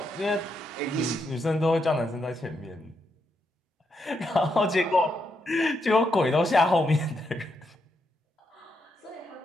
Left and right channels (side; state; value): both; normal; correlation 0.81